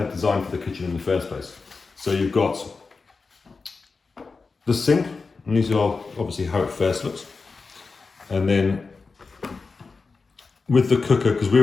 designed for the kitchen in the first place. So you've got the sink, and these are obviously how it first looks. And then with the cooker, because we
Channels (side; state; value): right; quieter; 4.4 dB